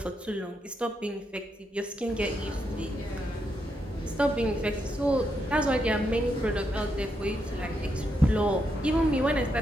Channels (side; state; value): both; normal; correlation 0.81